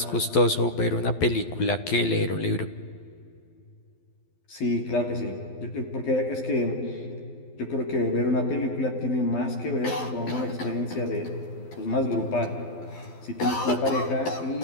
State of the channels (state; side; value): late; right; 12 ms